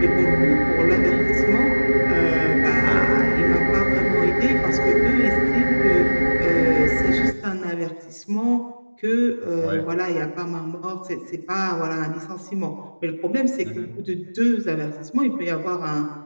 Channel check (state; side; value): inverted; both; correlation -1.00